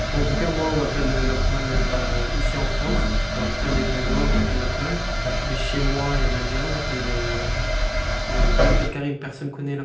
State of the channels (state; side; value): identical; both; correlation 1.00